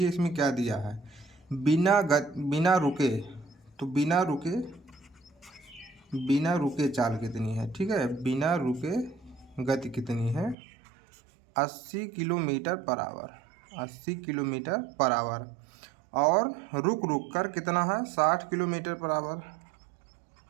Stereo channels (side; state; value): left; drops out; at 10.6 s